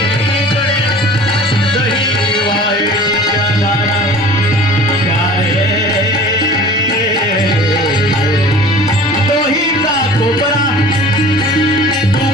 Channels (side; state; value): both; normal; correlation 0.43